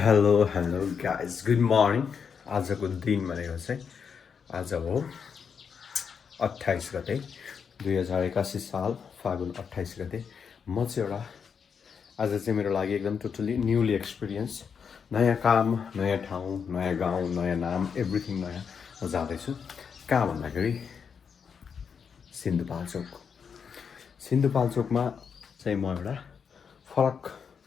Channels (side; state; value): right; quieter; 6.6 dB